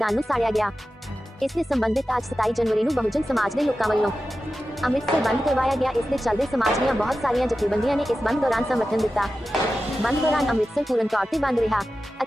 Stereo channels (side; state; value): both; normal; correlation 0.93